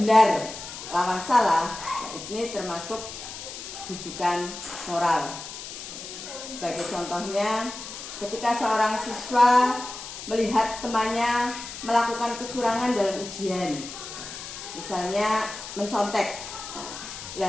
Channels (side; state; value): left; noise; hiss, 10 dB below the sound